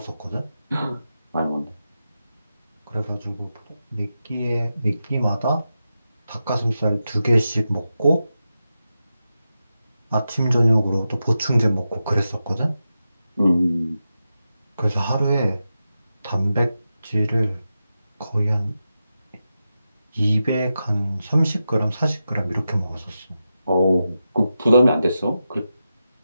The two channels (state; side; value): inverted; both; correlation -0.90